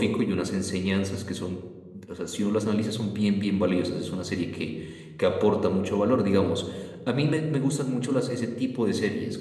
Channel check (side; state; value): both; identical; correlation 1.00